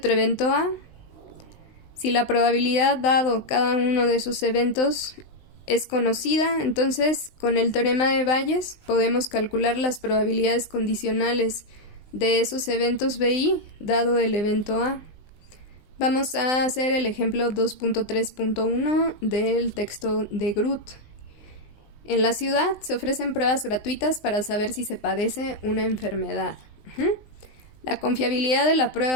evento A. Si la probabilidad dado cada uno de esos eventos es conocida, entonces con el teorema de Bayes podemos calcular las probabilidades condicionales de esos eventos BI dado el evento A. Vamos a hacer el ejemplo 2.3.1 del texto de Groth. En la ciudad se ofrecen pruebas gratuitas para saber si se padece una enfermedad. La confiabilidad de la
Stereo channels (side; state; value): right; late; 19 ms